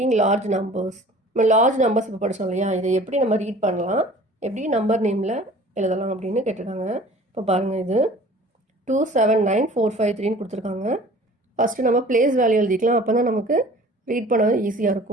large numbers. நம்ம லார்ஜ் நம்பர்ஸ் இப்போ படித்தோம் இல்லையா, இதை எப்படி நம்ம ரீட் பண்ணலாம், எப்படி நம்பர் நேமில் எழுதலாம் அப்படின்னு கேட்டிருக்காங்க. இப்போ பாருங்கள், இது 279453ன்னு கொடுத்துருக்காங்க. ஃபஸ்ட்டு நம்ம பிளேஸ் வேல்யூ எழுதிக்கலாம், அப்போ தான் நமக்கு ரீட் பண்ண ஈஸியாக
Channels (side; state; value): both; normal; correlation 0.47